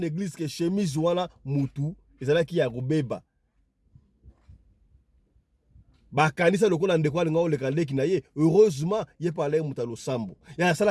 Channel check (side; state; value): both; identical; correlation 1.00